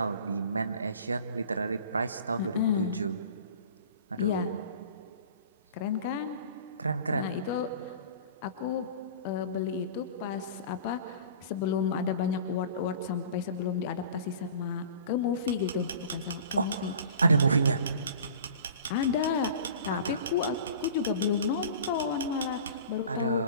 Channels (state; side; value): inverted; both; correlation -0.42